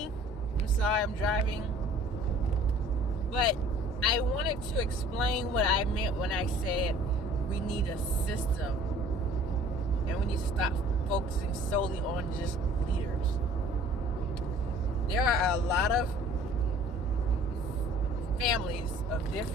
I'm sorry, I'm driving. But I wanted to explain what I meant when I said we need a system. And we need to stop focusing solely on just leaders. There are a lot of families of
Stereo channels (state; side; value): normal; both; correlation 0.51